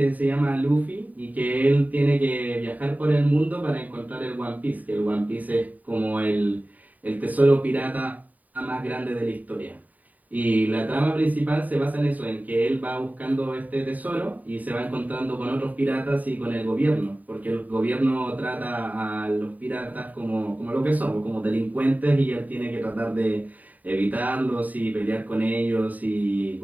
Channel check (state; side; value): late; left; 0.076 ms